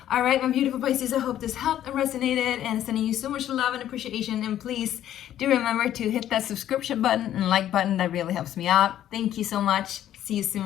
All right, my beautiful Pisces, I hope this helped and resonated, and sending you so much love and appreciation. And please do remember to hit that subscription button and like button. That really helps me out. Thank you so much. See you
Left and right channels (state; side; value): quieter; right; 11.7 dB